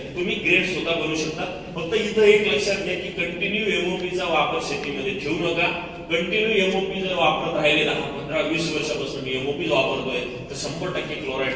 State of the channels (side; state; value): both; identical; correlation 1.00